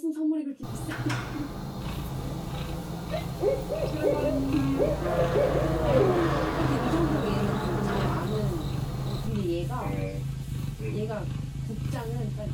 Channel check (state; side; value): identical; both; correlation 1.00